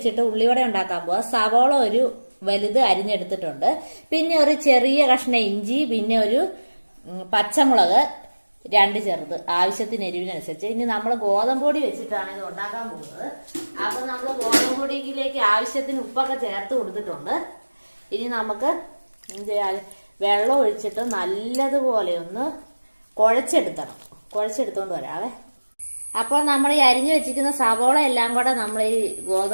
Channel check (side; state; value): both; inverted; correlation -1.00